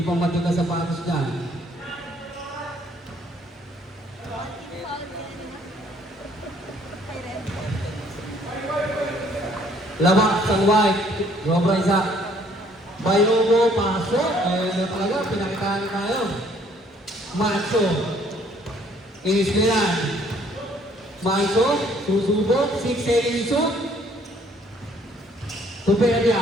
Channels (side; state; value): both; normal; correlation 0.62